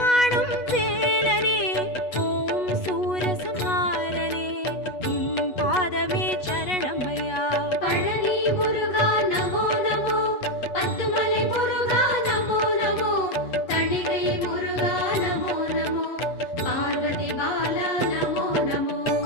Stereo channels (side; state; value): right; late; 8.2 ms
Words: வேலனே, ஓம் சூரசம்ஹாரனே, உன் பாதமே சரணமையா. பழனி முருகா நமோ நமோ, பத்துமலை முருகா நமோ நமோ, தணிகை முருகா நமோ நமோ, பார்வதி பாலா நமோ நமோ.